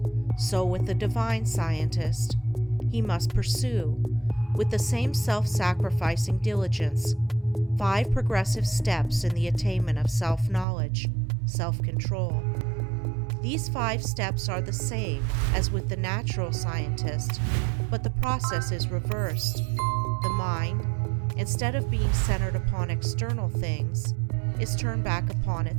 so with the divine scientist, he must pursue, with the same self-sacrificing diligence, 5 progressive steps in the attainment of self-knowledge, self-control. These 5 steps are the same as with the natural scientist, but the process is reversed. The mind, instead of being centered upon external things, is turned back upon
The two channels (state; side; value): drops out; left; at 10.7 s